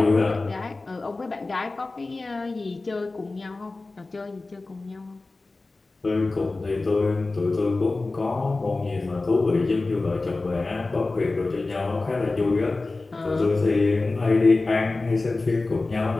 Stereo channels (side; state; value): right; quieter; 3.4 dB